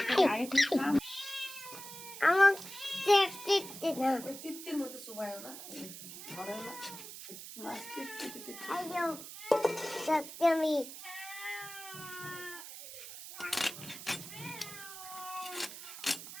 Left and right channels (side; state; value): right; noise; hiss, 12 dB below the sound